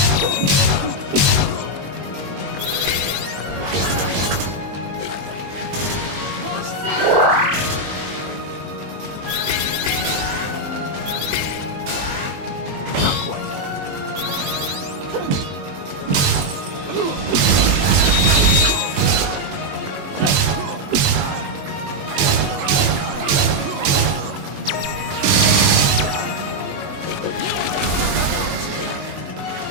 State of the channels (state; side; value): late; left; 21 ms